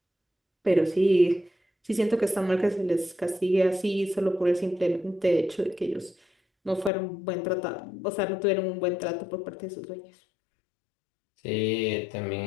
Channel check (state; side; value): drops out; right; at 6.9 s